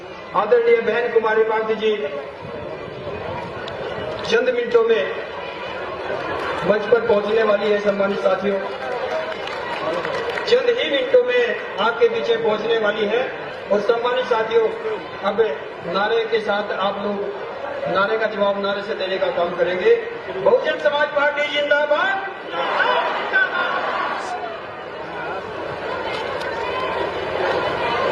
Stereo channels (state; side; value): identical; both; correlation 1.00